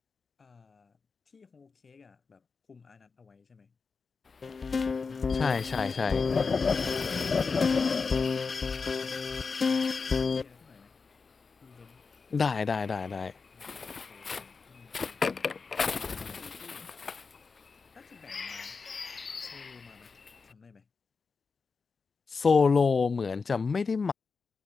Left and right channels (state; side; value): quieter; right; 4.8 dB